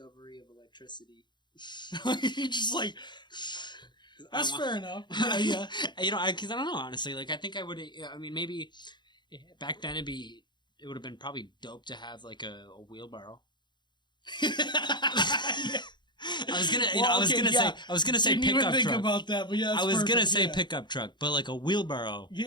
of electricity. You're just like... That's fair enough. Yeah. Because I don't know, honestly. Like, I think I would... I mean, maybe... Back then, it would have been probably dope to have, like, a wheelbarrow. I was gonna say pickup truck. Think about that, but yeah, I was gonna say pickup truck, but like a wheelbarrow.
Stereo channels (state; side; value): late; right; 0.22 ms